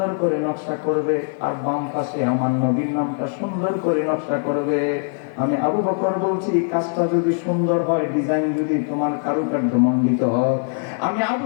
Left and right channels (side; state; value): right; silent; 57 dB below the other